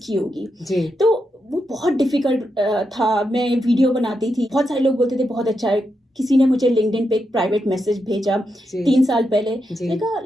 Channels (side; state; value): both; normal; correlation 0.85